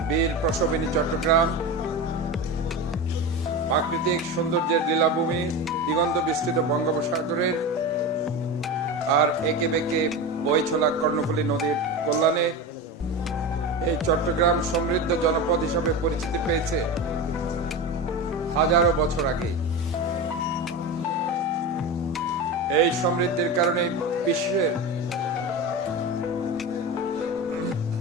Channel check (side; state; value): both; normal; correlation 0.24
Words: বীর প্রসবিনী চট্টগ্রাম প্রাকৃতিক সৌন্দর্যের লীলাভূমি, দিগন্ত বিস্তৃত বঙ্গোপসাগরের আর একে বেঁকে বয়ে চলা কর্ণফুলী নদীর কল্যাণে এই চট্টগ্রাম সমৃদ্ধ জনপদ হিসাবে পরিচিতি পেয়েছে হাজারো বছর আগে। এই সমৃদ্ধির কারণে